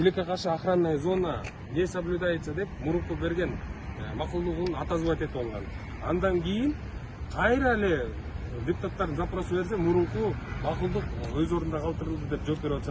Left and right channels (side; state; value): both; identical; correlation 1.00